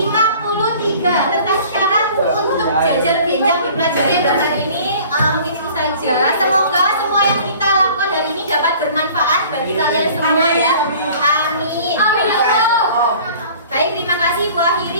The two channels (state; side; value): inverted; both; correlation -0.48